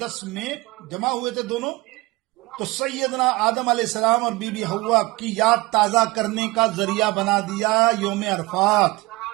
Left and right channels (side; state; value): left; quieter; 22.5 dB